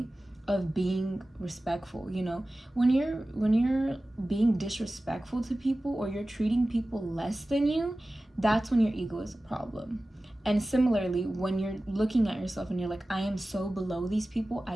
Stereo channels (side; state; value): both; normal; correlation 0.96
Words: of being respectful. When you're being disrespectful to people, or you're treating people less than you, that's when your ego is a problem. And similarly, when you're looking at yourself and you're like, I am so below these people,